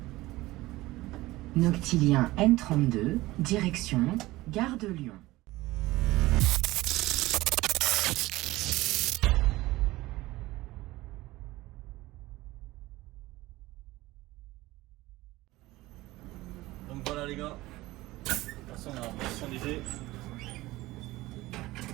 Noctilien N32, direction Gare de Lyon. Donc voilà les gars, attention on a Boissy-Saint-Léger.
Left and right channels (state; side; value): quieter; left; 18.6 dB